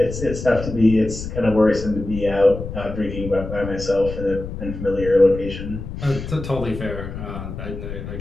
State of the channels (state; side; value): noise; left; rumble, 8 dB below the sound